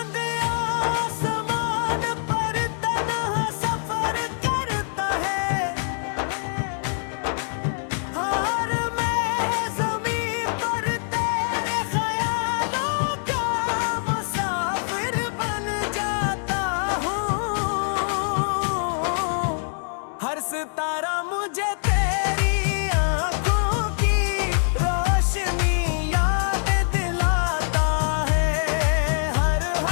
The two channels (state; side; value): silent; right; digital silence